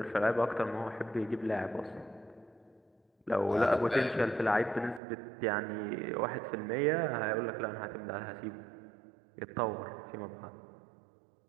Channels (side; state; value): left; drops out; at 5.0 s